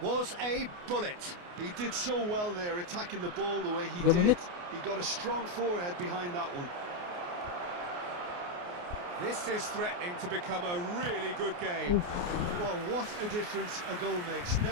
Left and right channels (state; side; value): late; left; 28 ms